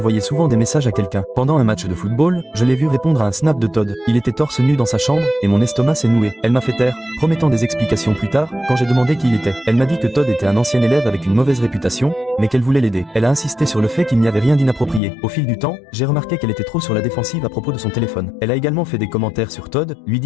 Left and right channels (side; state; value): right; drops out; at 15.0 s